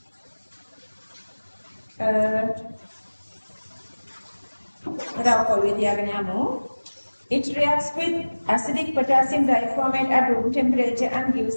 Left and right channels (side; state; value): both; inverted; correlation -1.00